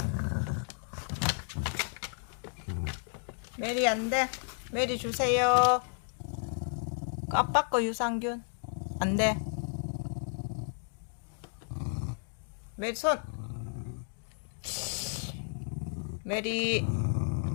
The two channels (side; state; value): right; silent; 56 dB below the other